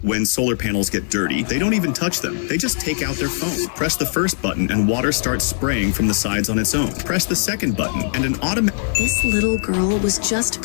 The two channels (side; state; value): right; silent; digital silence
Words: when solar panels get dirty, they don't even touch them. They just take out their phone. Press the first button and water starts spraying from the sides on its own. Press the second button and an automatic... This little girl was just